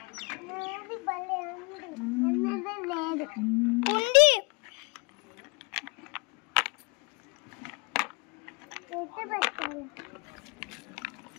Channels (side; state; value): right; quieter; 28.7 dB